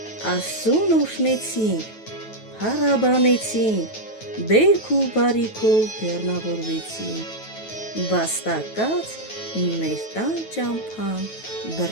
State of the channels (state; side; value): late; right; 9.2 ms